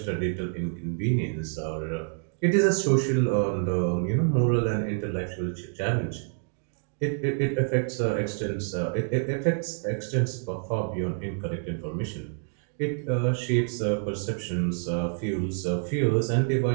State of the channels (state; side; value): silent; left; 59 dB below the other